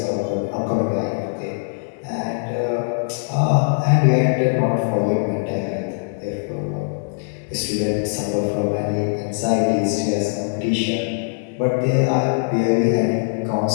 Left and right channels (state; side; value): silent; right; 65 dB below the other